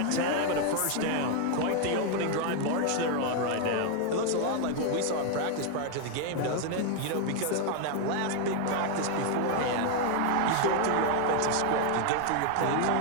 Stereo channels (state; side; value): different; both; correlation 0.00